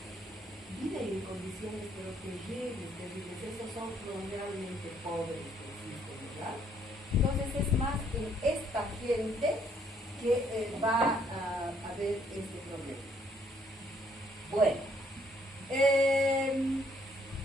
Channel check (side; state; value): both; normal; correlation 0.67